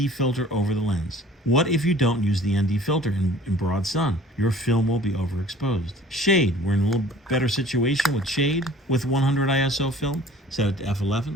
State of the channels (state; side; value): normal; both; correlation 0.49